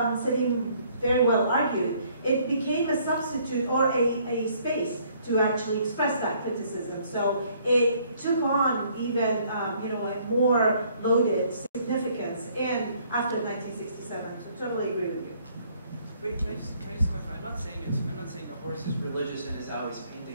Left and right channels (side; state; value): both; inverted; correlation -0.63